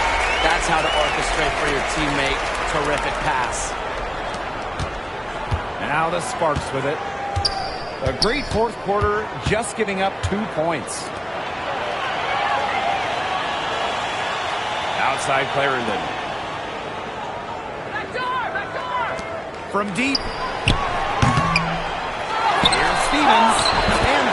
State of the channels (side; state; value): both; identical; correlation 1.00